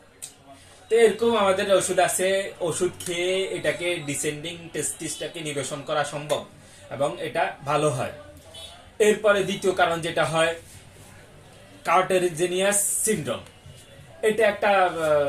তো এরকম আমাদের ওষুধ আছে। ওষুধ খেয়ে এটাকে ডিসেন্ডিং টেস্টিসটাকে নিরসন করা সম্ভব এবং এটা ভালো হয়। এরপরে দ্বিতীয় কারণ যেটা হয়, কার্টেজিনিয়াস সিনড্রোম। এটা একটা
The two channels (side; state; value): both; identical; correlation 1.00